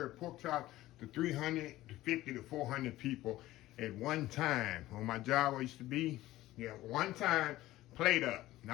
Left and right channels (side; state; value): right; quieter; 16.1 dB